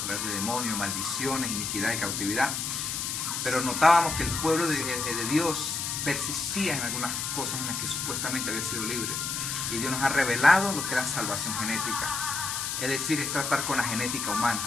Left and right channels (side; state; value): left; noise; hiss, 2 dB below the sound